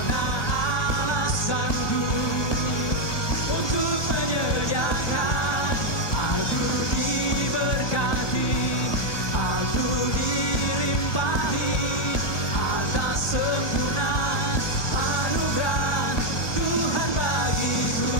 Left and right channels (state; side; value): late; right; 1.2 ms